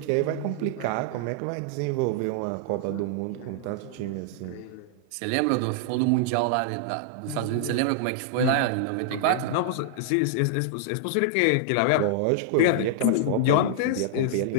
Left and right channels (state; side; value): different; both; correlation -0.01